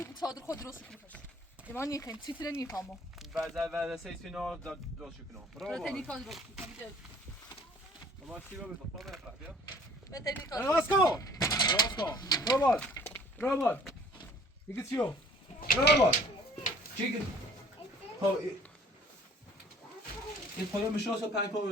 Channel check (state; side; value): normal; both; correlation 0.53